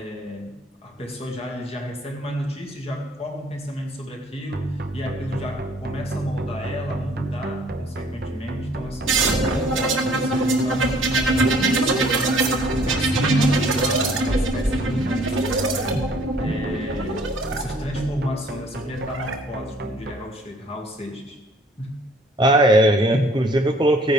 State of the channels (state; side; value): normal; both; correlation 0.57